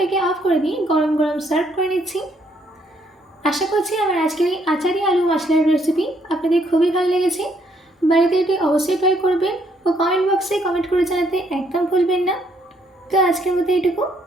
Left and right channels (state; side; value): normal; both; correlation 0.70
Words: অফ করে দিয়ে গরম গরম সার্ভ করে নিচ্ছি। আশা করছি আমার আজকের এই আচারি আলু মশলার রেসিপি আপনাদের খুবই ভালো লেগেছে। বাড়িতে এটি অবশ্যই ট্রাই করবেন ও কমেন্ট বক্সে কমেন্ট করে জানাতে একদম ভুলবেন না। তো আজকের মতো এইটুকু,